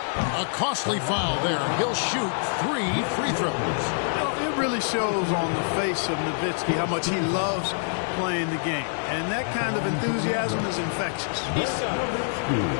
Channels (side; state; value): right; silent; digital silence